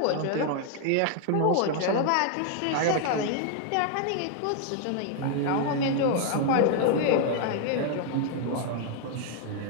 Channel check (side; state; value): both; different; correlation 0.00